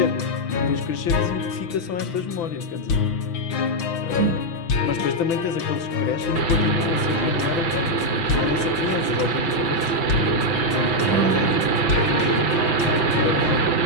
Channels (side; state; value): right; late; 6.0 ms